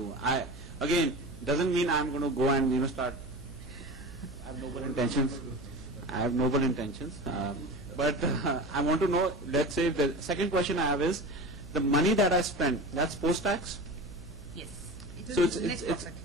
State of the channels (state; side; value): noise; right; hum, 17 dB below the sound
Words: Again, doesn't mean I'm going to go and, start, I have noble intentions. But I want to know, let's say, the second question I have is, the money that I spend, that's post-tax? Yes. It is So net